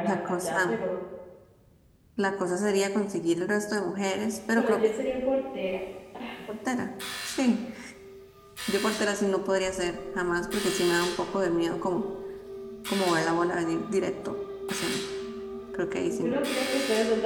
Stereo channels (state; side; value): identical; both; correlation 1.00